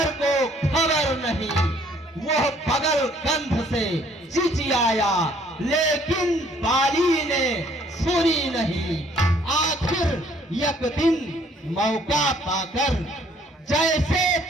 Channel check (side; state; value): both; normal; correlation 0.61